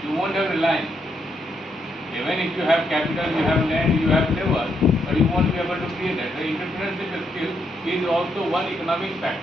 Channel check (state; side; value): normal; both; correlation 0.78